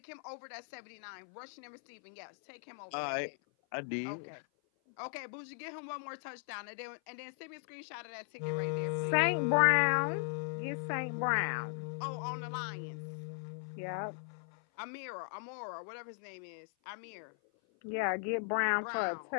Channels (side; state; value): right; silent; 53 dB below the other